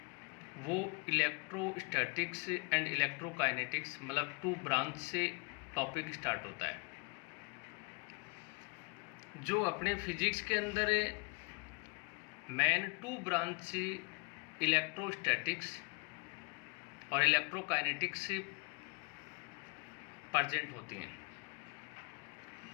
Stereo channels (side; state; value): right; quieter; 32.5 dB